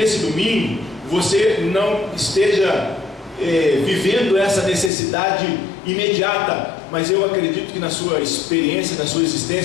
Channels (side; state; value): right; drops out; at 4.9 s